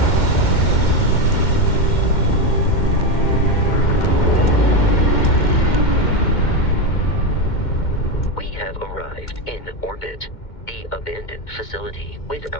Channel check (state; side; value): late; right; 2.1 ms